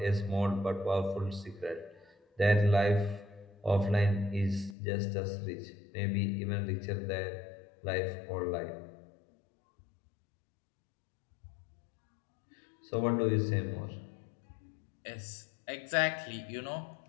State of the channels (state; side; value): drops out; right; at 4.8 s